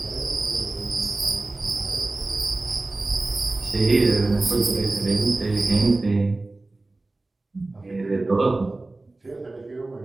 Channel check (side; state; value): left; quieter; 3.0 dB